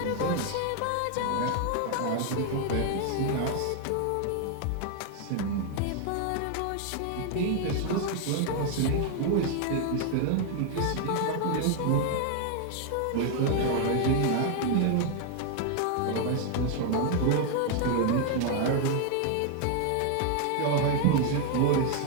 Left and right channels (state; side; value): different; both; correlation 0.00